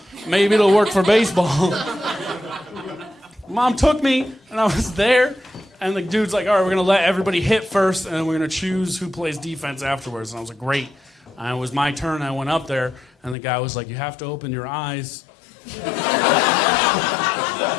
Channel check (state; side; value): drops out; right; at 13.4 s